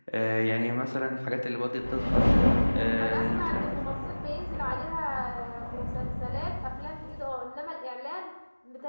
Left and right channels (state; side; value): inverted; both; correlation -1.00